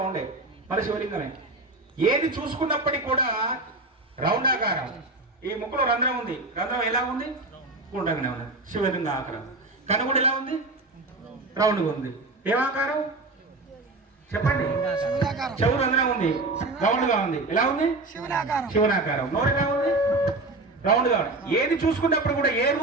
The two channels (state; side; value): quieter; left; 3.0 dB